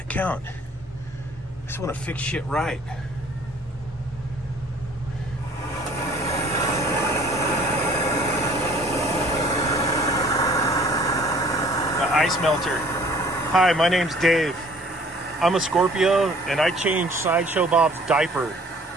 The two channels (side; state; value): both; normal; correlation 0.54